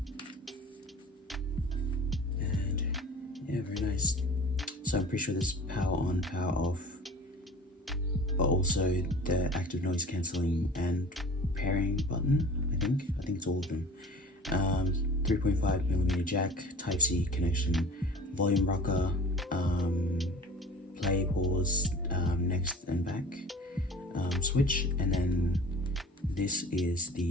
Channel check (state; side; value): normal; both; correlation 0.43